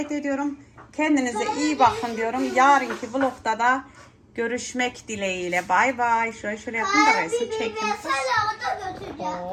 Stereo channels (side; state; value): both; identical; correlation 1.00